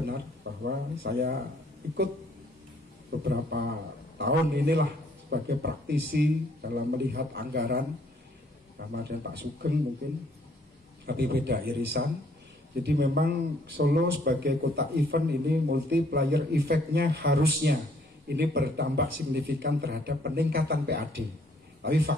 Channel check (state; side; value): normal; both; correlation 0.64